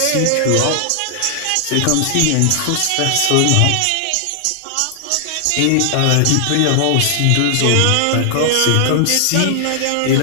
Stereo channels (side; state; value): both; different; correlation 0.00